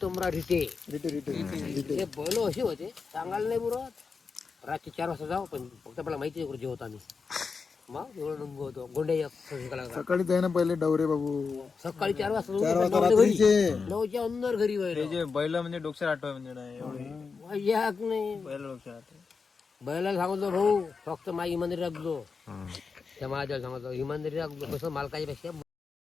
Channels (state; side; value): quieter; right; 5.0 dB